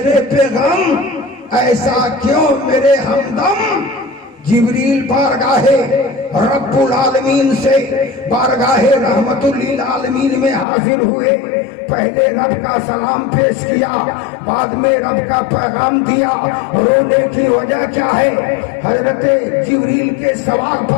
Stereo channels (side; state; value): right; drops out; at 10.7 s